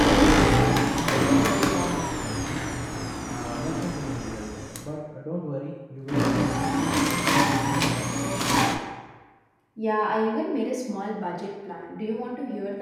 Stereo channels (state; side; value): identical; both; correlation 1.00